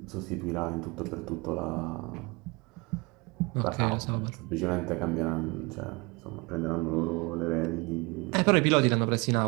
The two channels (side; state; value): left; quieter; 26.8 dB